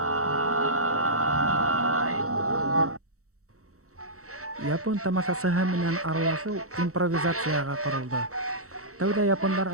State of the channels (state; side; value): late; left; 0.64 ms